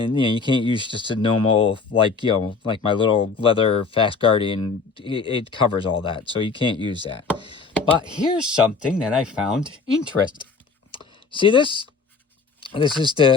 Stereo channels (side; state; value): right; quieter; 4.7 dB